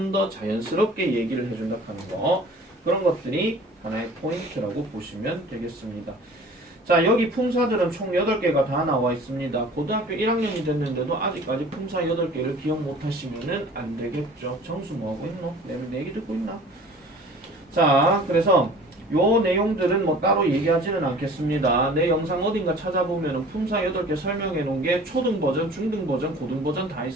더 자연스럽게 얘기를 해준다 하는 거. 그런 것들이 하나의 포인트라고 보시면 되겠습니다. 자, 여기 품사들은 총 8개가 다 나와 있습니다. 고등학교 1학년이 됐는데도 아직까지 품사 8개를 기억 못 하시면은 안 되겠죠. 정수 뭐 하고 있노? 내 얘기 듣고 있나? 자, 그래서 요 내용들은 뭐 따로 얘기하지는 않겠습니다. 내 영상 어딘가 찾아보면은 품사 8개 설명해 놓은 게 초등 버전, 중등 버전, 고등 버전 다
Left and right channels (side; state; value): both; normal; correlation 0.46